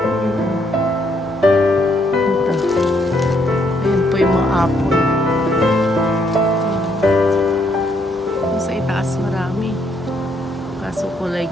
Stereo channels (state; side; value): normal; both; correlation 0.72